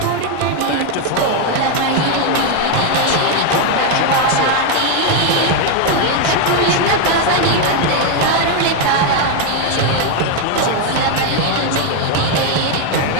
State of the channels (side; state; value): both; different; correlation 0.01